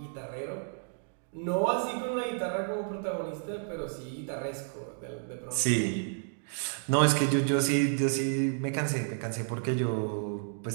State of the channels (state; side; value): silent; left; digital silence